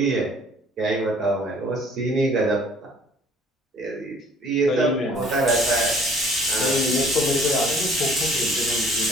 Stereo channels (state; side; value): normal; both; correlation 0.55